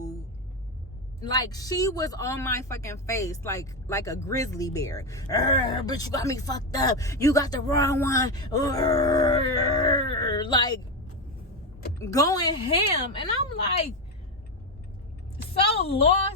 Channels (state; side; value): normal; both; correlation 0.12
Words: like, she was on my fucking face like a grizzly bear. But you got me fucked up. You got the wrong one. Like, going ham. And I'm like, so